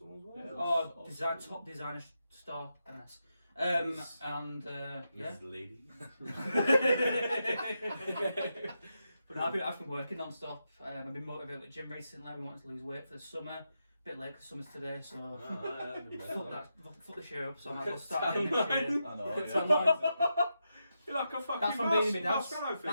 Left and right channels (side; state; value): both; inverted; correlation -0.86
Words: work. Yeah. Oh, top designer store, NS. And yeah. This lady. But no, I've been working non-stop. I've been motivated with gym recently. I've been wanting to lose weight for the summer. A bit late because summer's today, so fuck the shit up. So I might as well start getting this year. I know, It's yeah. online. You're like a fucking That's from being in my mouse, dad's. mouse, I think.